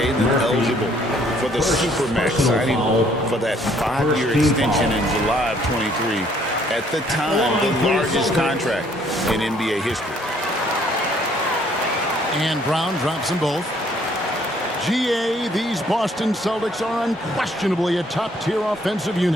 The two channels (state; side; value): normal; both; correlation 0.63